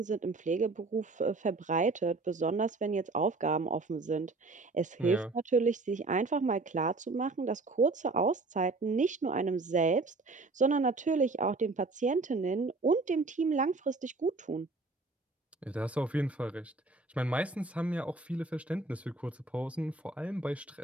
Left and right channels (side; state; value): left; quieter; 3.5 dB